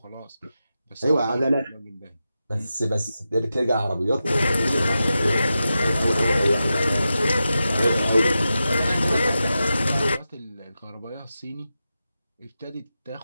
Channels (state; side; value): inverted; both; correlation -0.91